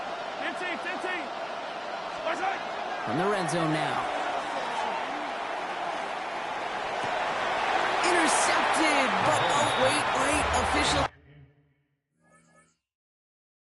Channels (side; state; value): both; identical; correlation 1.00